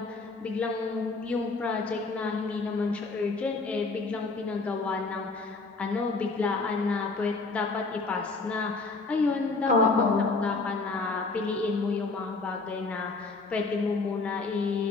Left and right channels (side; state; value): right; quieter; 3.8 dB